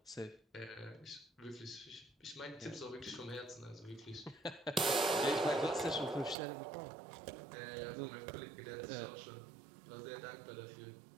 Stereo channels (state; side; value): drops out; left; at 6.4 s